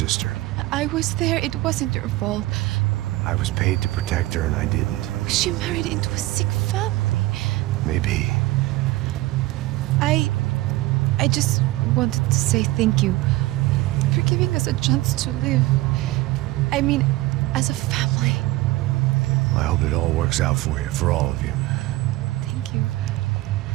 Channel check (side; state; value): left; quieter; 18.4 dB